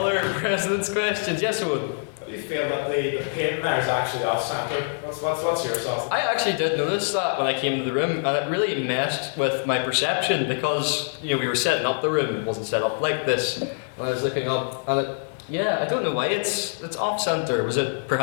President's Questions? Yes, Owen? Do you feel that the paint there is actually off-centre? What's your thoughts? I actually did notice that when I came to the room, and it really messed with my perception, because we were setting up the room, it wasn't set up like this, and I was looking up, and I don't know why it's off-centre. Was it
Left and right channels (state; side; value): silent; right; digital silence